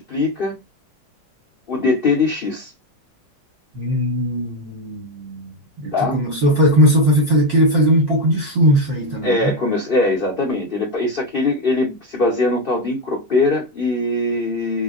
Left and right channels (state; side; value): normal; both; correlation 0.10